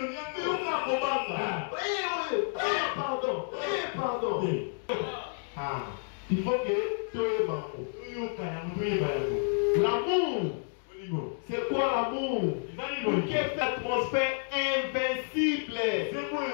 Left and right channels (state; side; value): silent; right; digital silence